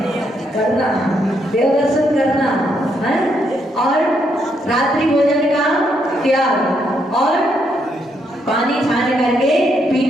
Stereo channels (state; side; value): normal; both; correlation 0.76